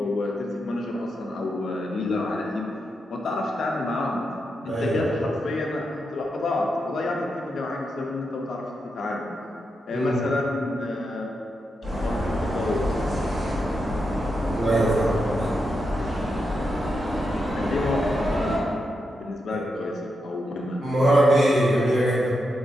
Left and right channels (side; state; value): both; normal; correlation 0.85